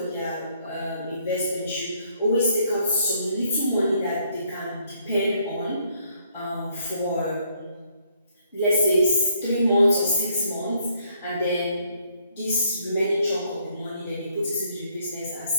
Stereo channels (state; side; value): inverted; both; correlation -0.69